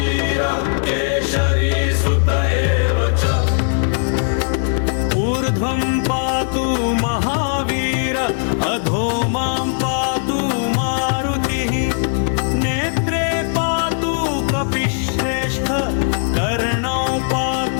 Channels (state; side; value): silent; right; 67 dB below the other